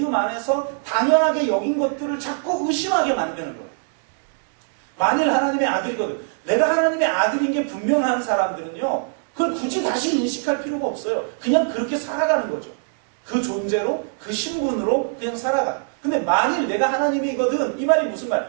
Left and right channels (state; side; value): silent; left; digital silence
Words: 안에서 당연하게 여긴 것들을 자꾸 의심하게 만드는 거예요. 만일 하나님의 아들이거든. 내가 하나님의 아들인 게 분명한 사람들은요, 그걸 굳이 다시 인식할 필요가 없어요. 그냥 그렇게 살아가는 거죠. 그 존재로, 그 신분으로 그냥 살아가. 근데 만일 내가 하나님이거든, 이 말이 무슨